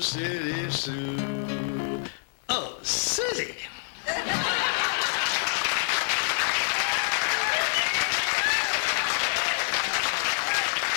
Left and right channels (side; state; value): right; silent; digital silence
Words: Sue. Oh, Susie.